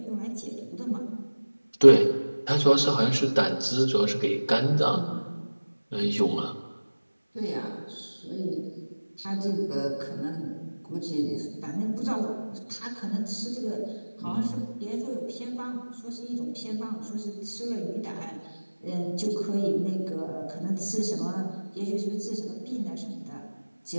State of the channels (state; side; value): inverted; both; correlation -1.00